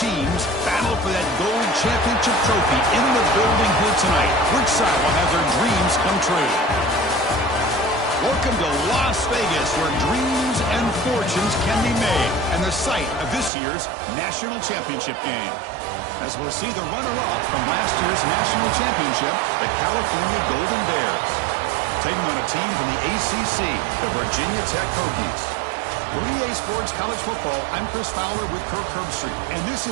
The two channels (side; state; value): left; drops out; at 13.5 s